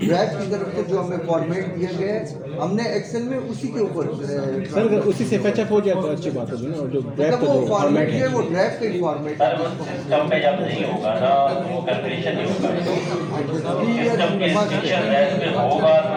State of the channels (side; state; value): both; identical; correlation 1.00